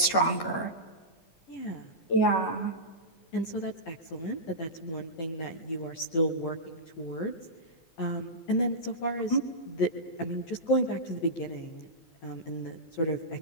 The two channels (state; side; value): late; right; 12 ms